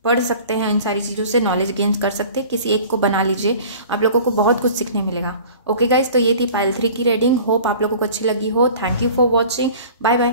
पढ़ सकते हैं, इन सारी चीज़ों से नॉलेज गेन कर सकते हैं। किसी एक को बना लीजिए, आप लोगों को बहुत कुछ सीखने मिलेगा। ओके गाइज, तो ये थी पाइल 3 की रीडिंग। होप आप लोगों को अच्छी लगी हो। Thank you for watching. Bye bye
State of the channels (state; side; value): inverted; both; correlation -0.44